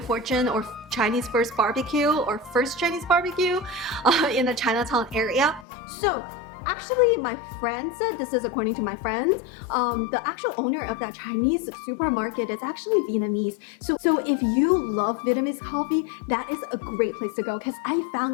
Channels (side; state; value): right; drops out; at 5.7 s